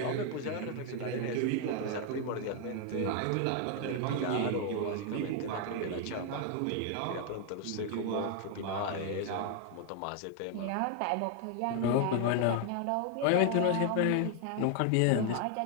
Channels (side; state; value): both; different; correlation 0.00